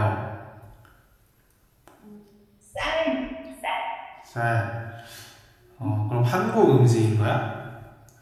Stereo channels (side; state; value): both; identical; correlation 1.00